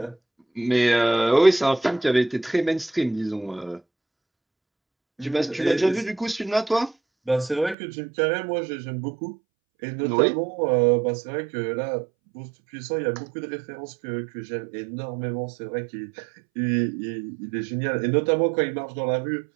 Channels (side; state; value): left; drops out; at 7.8 s